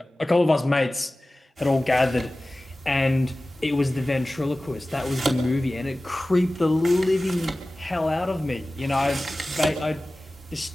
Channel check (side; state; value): both; normal; correlation 0.97